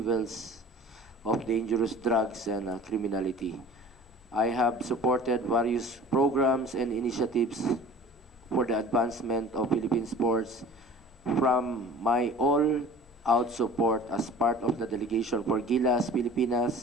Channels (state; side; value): normal; both; correlation 0.43